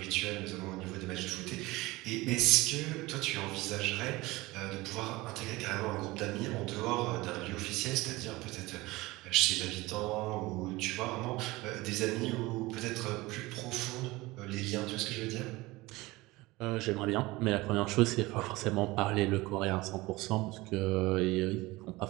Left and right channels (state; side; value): quieter; left; 20.8 dB